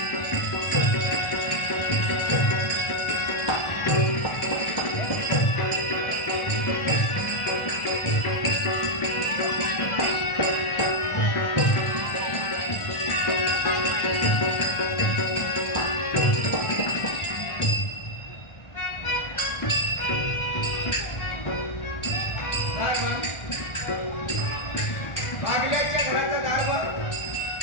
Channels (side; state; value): right; late; 1.4 ms